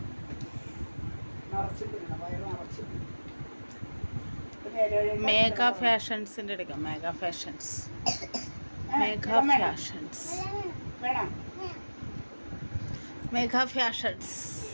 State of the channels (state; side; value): inverted; both; correlation -1.00